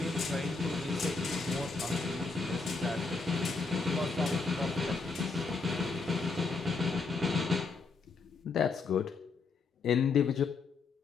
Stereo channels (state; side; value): quieter; right; 4.4 dB